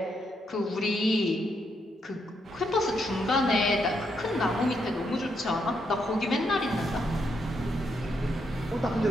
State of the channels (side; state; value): both; normal; correlation 0.78